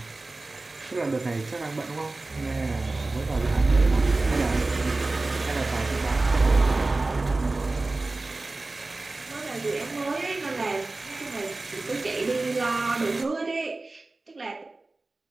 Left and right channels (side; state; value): left; quieter; 3.2 dB